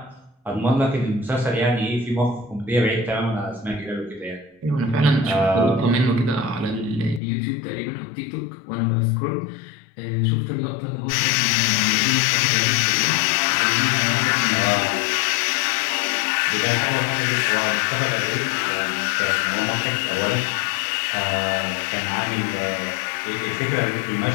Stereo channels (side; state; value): right; drops out; at 7.2 s